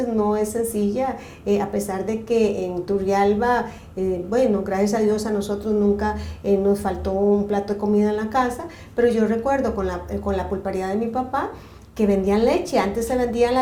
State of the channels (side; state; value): both; identical; correlation 1.00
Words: no es sencilla, a pesar de que en Turrialba, bueno, gracias a Dios a nosotros nunca nos faltó un plato de comida en la casa, pero yo recuerdo con la pulpería de mi papá, que vendían leche. Antes se vendían